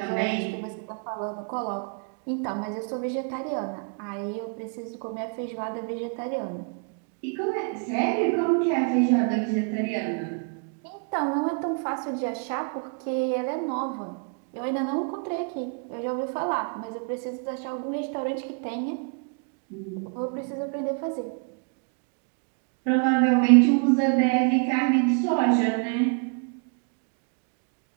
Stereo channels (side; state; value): left; quieter; 39.9 dB